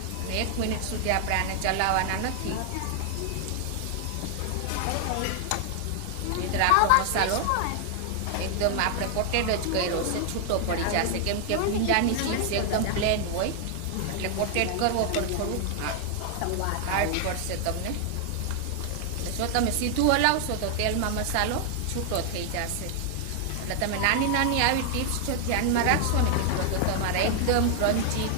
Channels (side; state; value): both; different; correlation 0.00